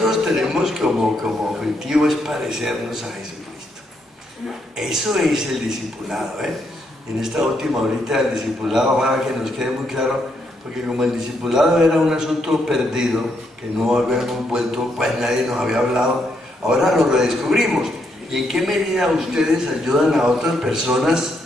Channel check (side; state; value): both; normal; correlation 0.77